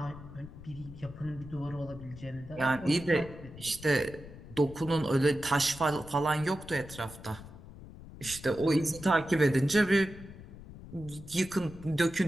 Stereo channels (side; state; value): left; noise; rumble, 16 dB below the sound